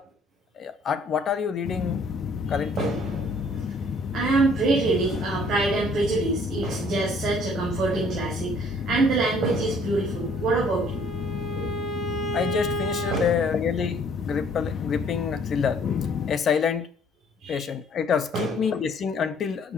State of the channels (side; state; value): both; normal; correlation 0.59